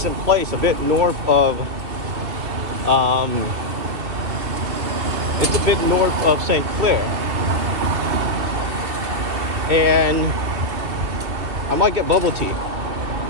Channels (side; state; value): left; late; 2.8 ms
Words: place a bit north of it's a bit north of St. Clair, and I might get bubble tea.